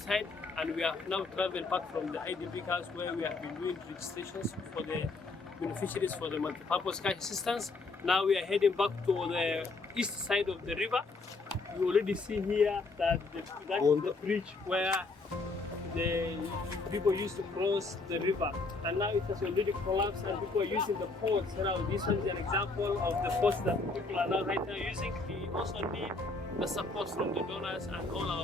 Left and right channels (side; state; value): right; quieter; 3.6 dB